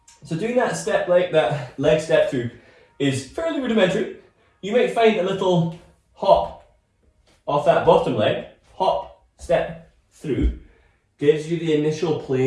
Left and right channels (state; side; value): identical; both; correlation 1.00